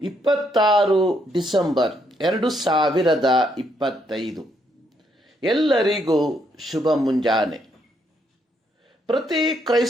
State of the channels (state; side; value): normal; both; correlation 0.74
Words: 26 ಡಿಸೆಂಬರ್ 2025. ಎಲ್ಲರಿಗೂ ಶುಭ ಮುಂಜಾನೆ. ಪ್ರತಿ